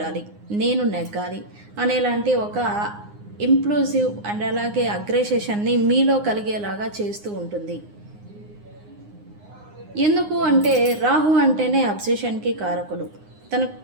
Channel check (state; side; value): late; left; 9.7 ms